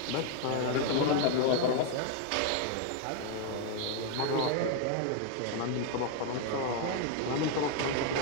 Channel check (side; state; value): both; different; correlation 0.01